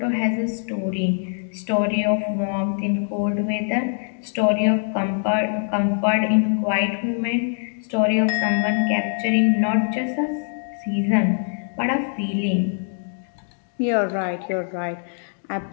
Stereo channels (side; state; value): right; silent; digital silence